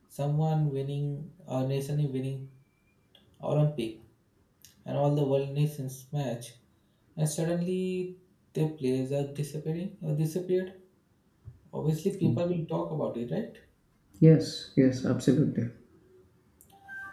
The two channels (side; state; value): both; identical; correlation 1.00